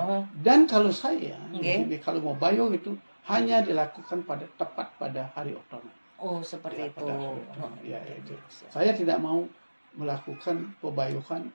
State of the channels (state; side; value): inverted; both; correlation -1.00